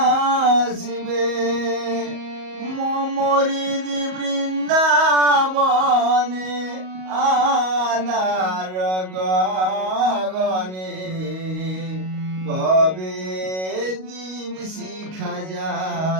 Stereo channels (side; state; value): left; late; 38 ms